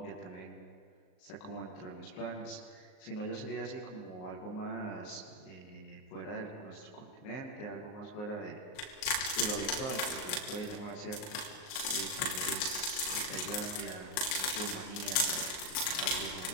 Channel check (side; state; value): right; late; 38 ms